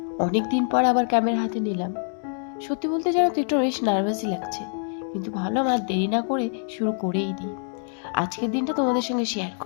অনেক দিন পর আবার ক্যামেরা হাতে নিলাম। সত্যি বলতে জানো তো একটু বেশ নার্ভাসই লাগছে, কিন্তু ভাবলাম আর দেরি না করে শুরু করেই দিই। আজকের দিনটা তোমাদের সঙ্গে শেয়ার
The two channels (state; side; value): silent; right; 62 dB below the other